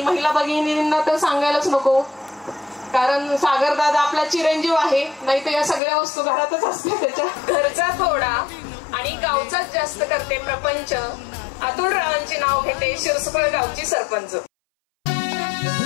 महिला भगिनींना तर सांगायलाच नको, कारण सागर दादा आपला चिरंजीव आहे. नाही तर या सगळ्या वस्तू घरातच असते त्याच्या. घरचा थोडा आणि गावचाच जास्त करते प्रपंच. अतुल रावांचे नाव घेते शिरसुकळ गावची सरपंच.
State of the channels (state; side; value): drops out; right; at 5.8 s